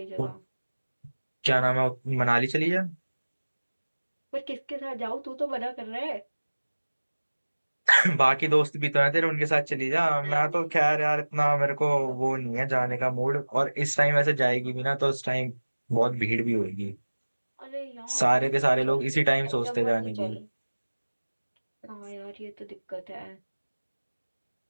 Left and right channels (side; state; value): both; inverted; correlation -1.00